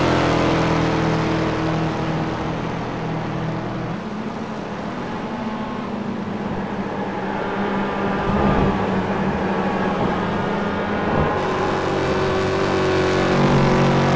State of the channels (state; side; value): identical; both; correlation 1.00